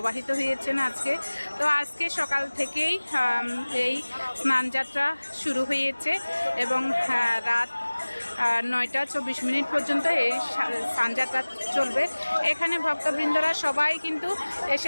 হয়েছেন আজকে। তো আজকে সকাল থেকেই এই স্নানযাত্রা শুরু হয়েছে এবং রাত 9:24 পর্যন্ত এই স্নানযাত্রা চলবে। এখানে ভক্তবৃন্দরা সবাই কিন্তু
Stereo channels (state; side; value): inverted; both; correlation -1.00